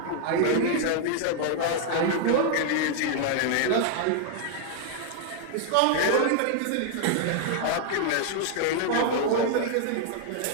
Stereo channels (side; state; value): both; different; correlation 0.00